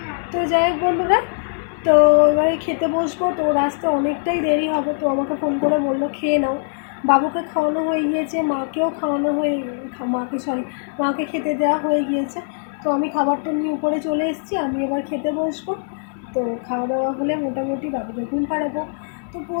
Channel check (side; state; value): right; silent; 65 dB below the other